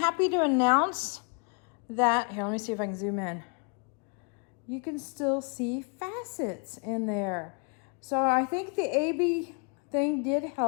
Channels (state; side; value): quieter; right; 38.8 dB